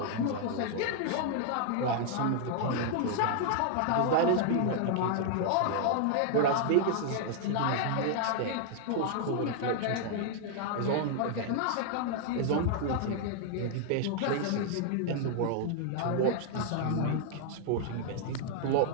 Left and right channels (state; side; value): different; both; correlation 0.00